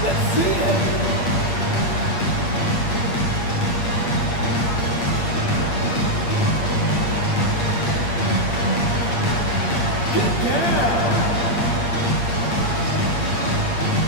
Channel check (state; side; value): late; right; 8.6 ms